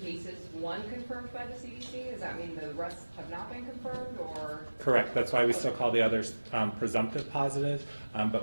cases, one confirmed by the CDC. Does that mean the rest have not been confirmed, or? Correct. That's why we still call the others presumptive positive,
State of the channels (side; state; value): both; inverted; correlation -1.00